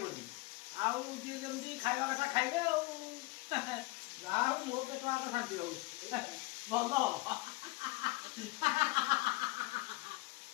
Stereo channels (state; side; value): quieter; right; 22.0 dB